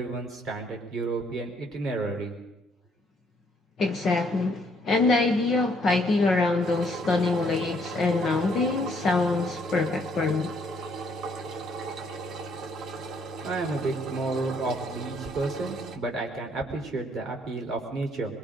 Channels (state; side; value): normal; both; correlation 0.67